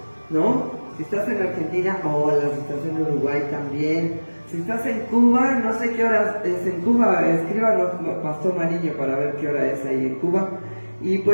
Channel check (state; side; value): inverted; both; correlation -1.00